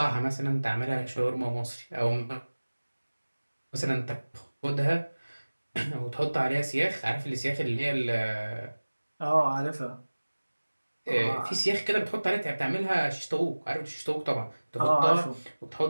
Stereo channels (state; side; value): inverted; both; correlation -1.00